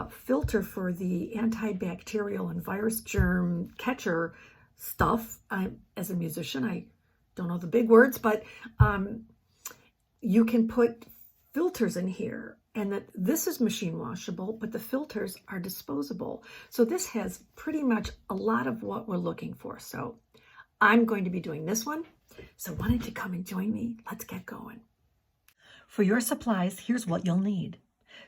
filter for the antibacterial and virus germ catcher stuff, as a musician, I don't know the big words, but you can put filters in here, and that this is machine washable, but the filters are disposable. So this has pretty much a lot of what we're looking for. So I'm going to be doing this one. So why don't you come and join me? Let's get going. For your supplies, here's what you'll need.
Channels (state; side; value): identical; both; correlation 1.00